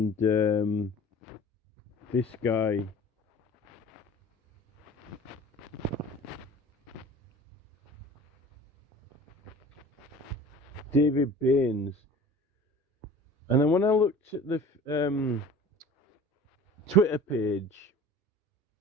this guy. David Baines. And then when I looked at the Twitter page,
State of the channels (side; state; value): both; normal; correlation 0.43